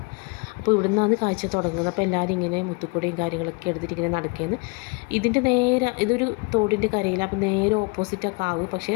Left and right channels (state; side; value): quieter; right; 29.5 dB